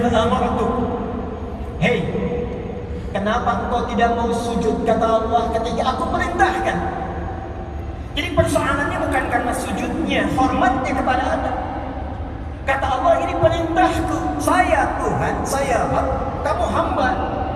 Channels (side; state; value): both; identical; correlation 1.00